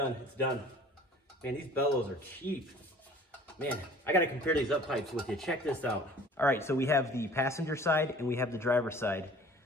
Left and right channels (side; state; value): both; normal; correlation 0.49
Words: It's done. Man, these bellows are cheap. Man, I gotta compare these up pipes with you. Check this out. All right, so we have the passenger side and we have the driver's side.